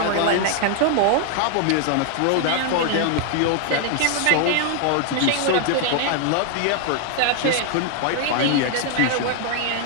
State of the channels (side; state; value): both; different; correlation 0.00